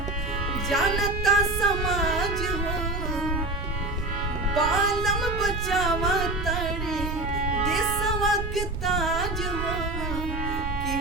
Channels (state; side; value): noise; right; rumble, 5 dB below the sound